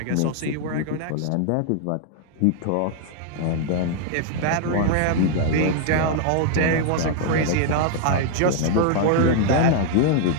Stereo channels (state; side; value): different; both; correlation 0.00